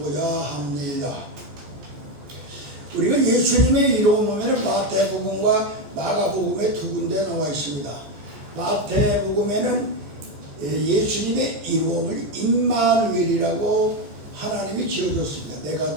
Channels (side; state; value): left; late; 14 ms